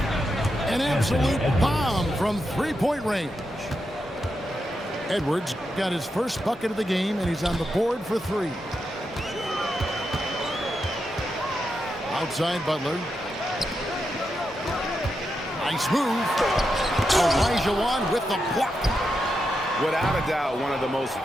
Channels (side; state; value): both; normal; correlation 0.86